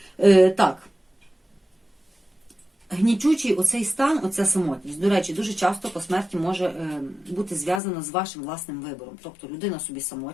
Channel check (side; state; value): right; drops out; at 7.8 s